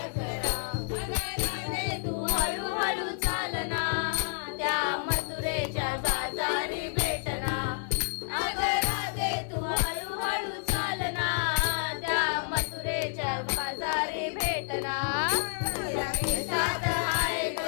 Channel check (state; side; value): silent; right; digital silence